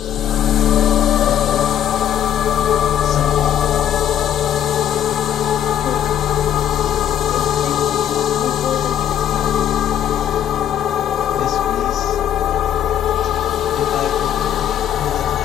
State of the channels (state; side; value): quieter; right; 10.3 dB